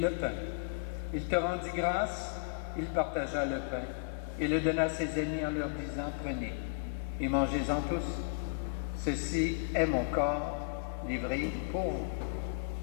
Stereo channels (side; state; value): right; silent; digital silence